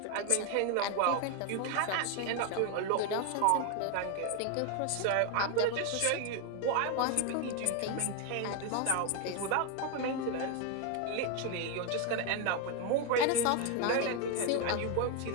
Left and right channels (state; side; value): different; both; correlation 0.01